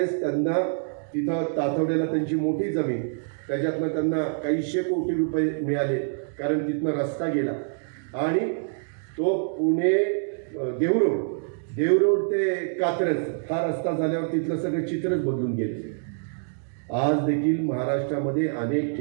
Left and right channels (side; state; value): left; silent; digital silence